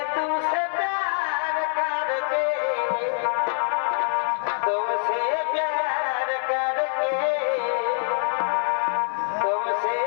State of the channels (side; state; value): right; silent; 62 dB below the other